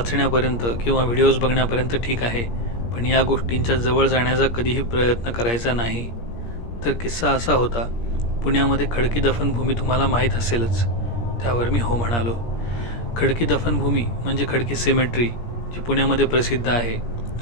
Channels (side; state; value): right; late; 17 ms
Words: किंवा व्हिडिओज बघण्यापर्यंत ठीक आहे, पण या गोष्टींच्या जवळ जाण्याचा कधीही प्रयत्न करायचा नाही. तर किस्सा असा होता, पुण्यामध्ये खडकी दफनभूमी तुम्हाला माहीत असेलच. त्यावर मी हो म्हणालो. खडकी दफनभूमी म्हणजे खडकी सिमेट्री, जी पुण्यामध्ये प्रसिद्ध आहे.